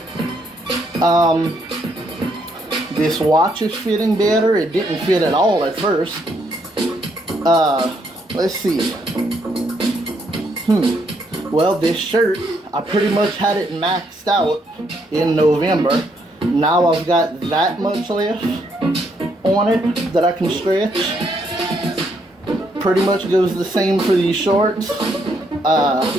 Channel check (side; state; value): both; normal; correlation 0.73